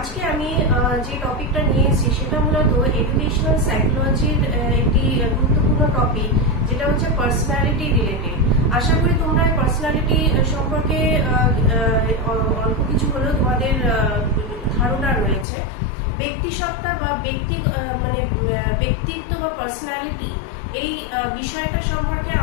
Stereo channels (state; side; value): drops out; right; at 15.5 s